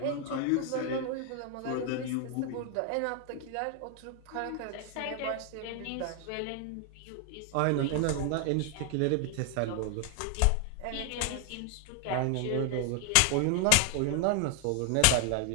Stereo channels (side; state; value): both; different; correlation 0.00